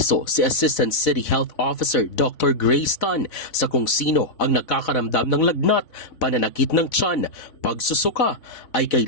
si Assistant City Health Officer Dr. Grace Tan sa kung sino ang nakakaramdam ng lagnat, pananakit ng tiyan, pagsusuka ay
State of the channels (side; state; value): right; late; 4.0 ms